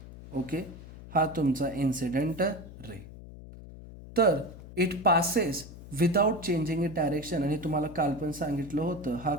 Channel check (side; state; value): left; noise; hum, 15 dB below the sound